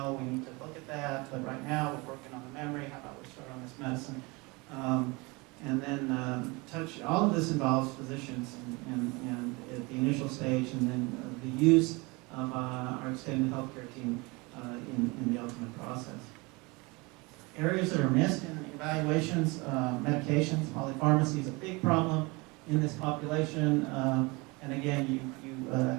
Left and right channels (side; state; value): left; quieter; 25.9 dB